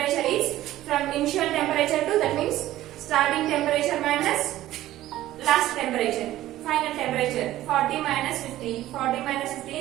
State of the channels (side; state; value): left; quieter; 14.6 dB